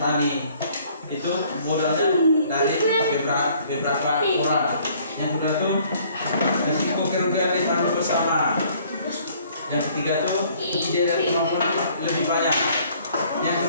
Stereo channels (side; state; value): both; inverted; correlation -0.59